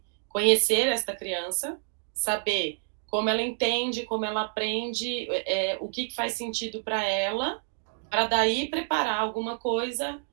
conhecer esta criança, saber como ela entende, como ela aprende, o que faz sentido para ela, para daí preparar alguma coisa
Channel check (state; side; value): silent; left; 59 dB below the other